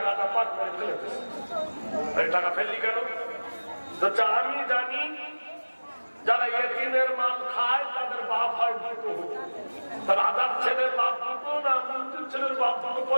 পাট করে ফেলে দিস। টাকা ফেললি কেন? আমি জানি যারা এতিমের মাল খায় তাদের বাপ হয় দুটো। রাজার ছেলের বাপ দুটো না মন্ত্রীর ছেলের বাপ দুটো,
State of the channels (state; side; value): inverted; both; correlation -1.00